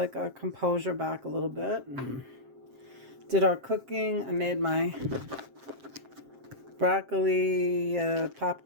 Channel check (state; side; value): late; left; 7.6 ms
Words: our composure back a little bit. And did our cooking. I made my broccoli